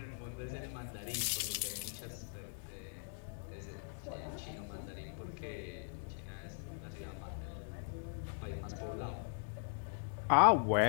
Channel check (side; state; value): right; silent; digital silence